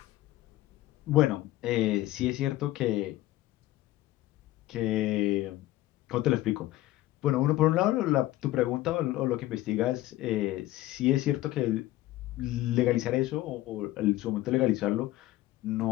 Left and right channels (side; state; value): right; quieter; 16.1 dB